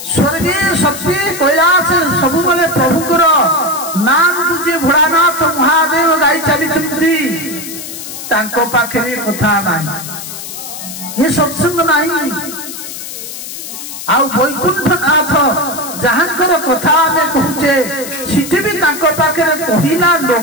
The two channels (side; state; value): left; noise; hiss, 10 dB below the sound